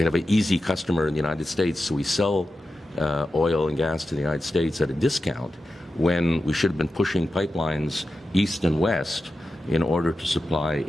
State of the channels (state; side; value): normal; both; correlation 0.91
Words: an easy customer in the United States, so we sell oil and gas to the United States at a discount when we should have been pushing pipelines east and west in order to supply